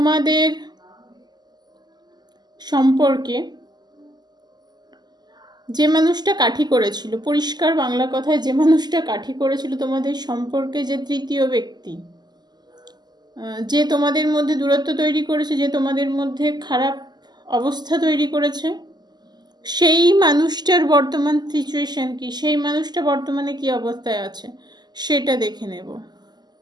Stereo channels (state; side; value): late; left; 0.21 ms